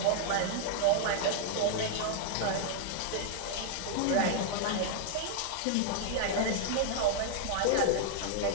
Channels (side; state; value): both; different; correlation 0.00